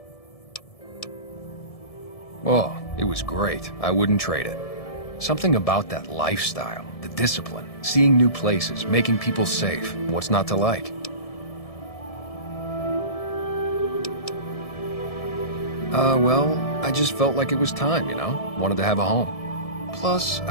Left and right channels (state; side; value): late; right; 1.7 ms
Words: Oh, it was great. I wouldn't trade it. Something about that lifestyle, the discipline, seeing new places, making people safe. What's not to like? Well, I just felt like it was time, you know? Wanted to have a home. Plus,